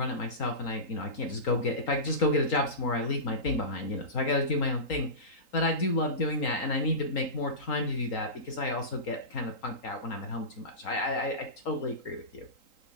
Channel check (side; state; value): right; late; 3.8 ms